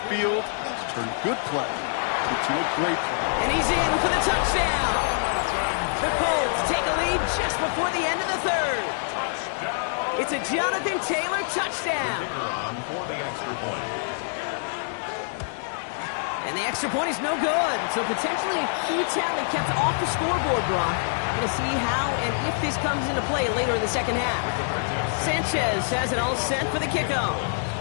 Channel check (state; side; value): silent; right; digital silence